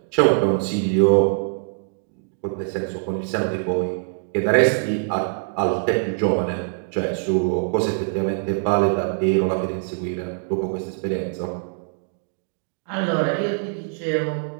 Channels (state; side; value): silent; left; digital silence